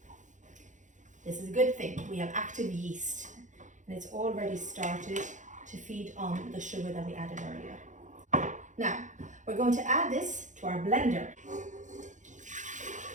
This is a good thing. We have active yeast and it's already started to feed on the sugar that we added earlier. Now, we're going to add this to our blender.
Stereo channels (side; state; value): left; late; 0.36 ms